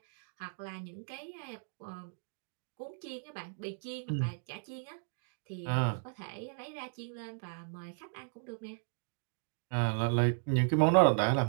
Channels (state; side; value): silent; left; digital silence